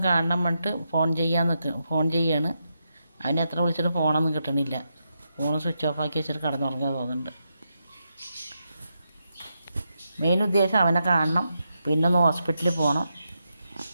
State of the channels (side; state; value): both; inverted; correlation -0.84